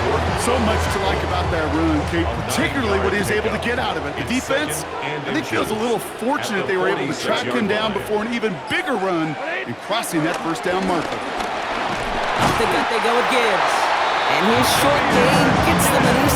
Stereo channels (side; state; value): both; identical; correlation 1.00